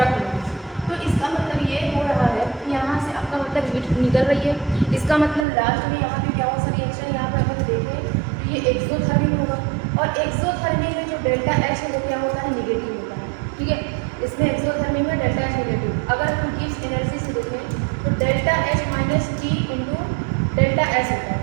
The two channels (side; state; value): left; drops out; at 5.5 s